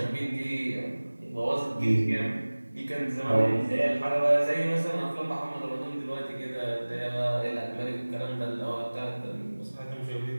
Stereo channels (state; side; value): inverted; both; correlation -1.00